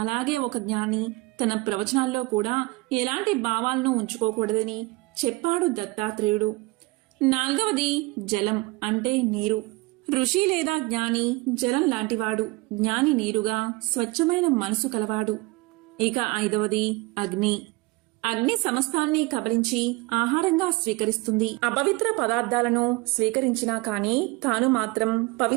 అలాగే ఒక జ్ఞాని తన ప్రవచనాల్లో కూడా ఎలాంటి భావాలను ఉంచుకోకూడదని చెప్పాడు దత్తాత్రేయుడు. నాలుగవది జలం, అంటే నీరు. ఋషి లేదా జ్ఞాని జలం లాంటివాడు, జ్ఞాని నీరుగా స్వచ్ఛమైన మనసు కలవాడు. ఇక ఐదవది అగ్ని. అగ్ని సమస్తాన్ని కబలించి ఆహారంగా స్వీకరిస్తుంది. అపవిత్ర పదార్థాలను స్వీకరించినా కాని తాను మాత్రం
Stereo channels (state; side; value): quieter; left; 22.3 dB